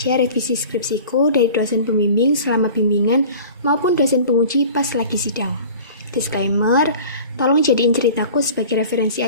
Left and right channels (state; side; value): inverted; both; correlation -0.42